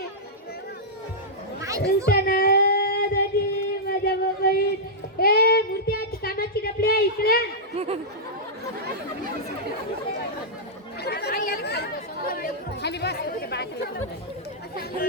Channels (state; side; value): normal; both; correlation -0.10